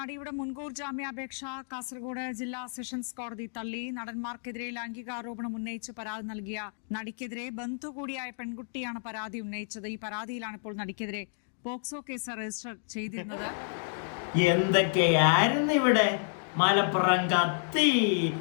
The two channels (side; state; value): right; silent; digital silence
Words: മുൻകൂർ ജാമ്യാപേക്ഷ കാസർഗോഡ് ജില്ലാ സെഷൻസ് കോടതി തള്ളി. നടന്മാർക്കെതിരെ ലൈംഗികാരോപണം ഉന്നയിച്ച് പരാതി നൽകിയ നടിക്കെതിരെ ബന്ധു കൂടിയായ പെൺകുട്ടിയാണ് പരാതി ഉന്നയിച്ചത്. ഈ പരാതിയിലാണ് ഇപ്പോൾ നടിക്കെതിരെ പോക്സോ കേസ് രജിസ്റ്റർ ചെയ്തിരുന്നത്. എന്തൊക്കെയായിരുന്നു ഇവിടെ? മലപ്പുറം കത്തി,